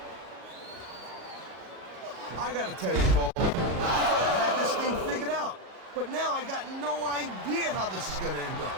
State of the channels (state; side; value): late; left; 37 ms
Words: I gotta tell you, Cole, I thought I had this thing figured out. But now I got no idea how this is gonna end up.